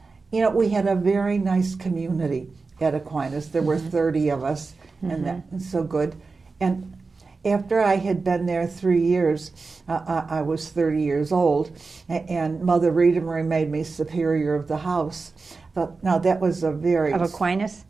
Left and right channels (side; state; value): left; quieter; 4.2 dB